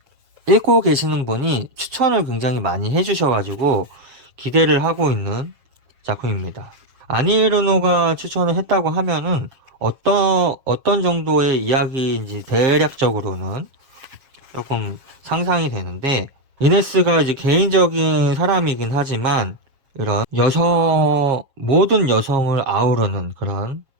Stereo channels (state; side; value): late; left; 7.3 ms